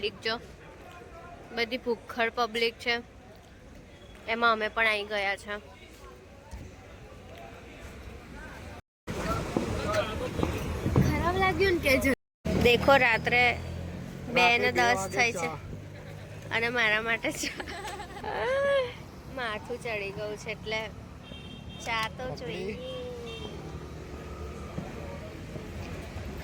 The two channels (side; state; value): both; identical; correlation 1.00